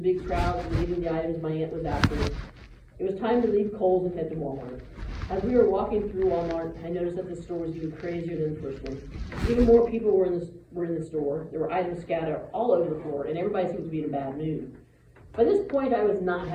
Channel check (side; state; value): both; identical; correlation 1.00